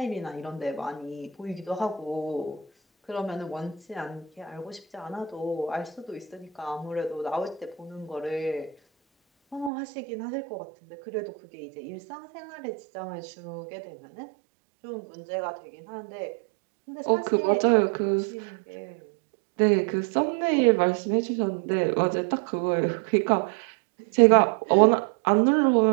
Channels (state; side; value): drops out; left; at 9.7 s